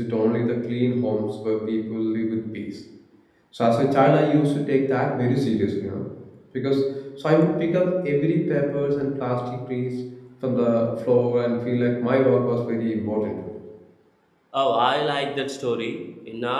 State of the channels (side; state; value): both; identical; correlation 1.00